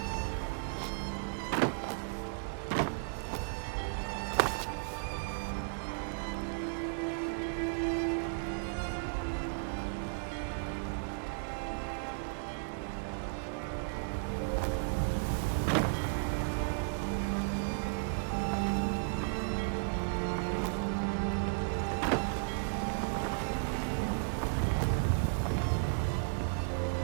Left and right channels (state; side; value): silent; left; 55 dB below the other